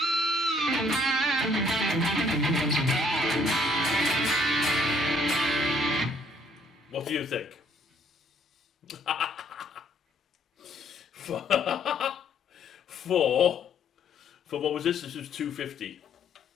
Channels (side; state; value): both; normal; correlation 0.64